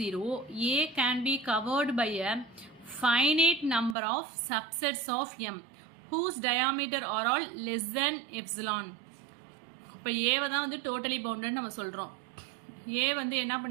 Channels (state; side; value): drops out; left; at 4.0 s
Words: A can be covered by a finite number of subsets of M whose diameter are all less than epsilon. இப்போ ஏவை தான் வந்து totally bounded நம்ம சொல்கிறோம். ஏ வந்து என்ன